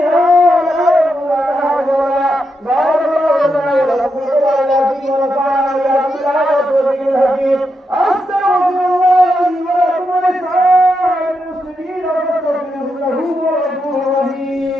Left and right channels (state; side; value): normal; both; correlation 0.84